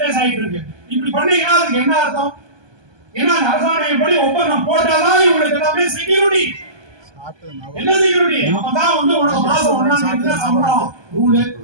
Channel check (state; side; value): late; left; 1.2 ms